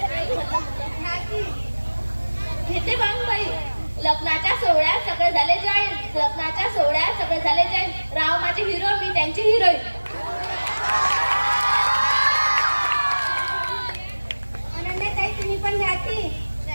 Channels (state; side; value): inverted; both; correlation -1.00